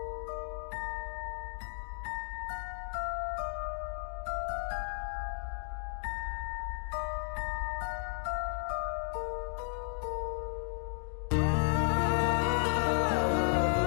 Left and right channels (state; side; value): silent; right; digital silence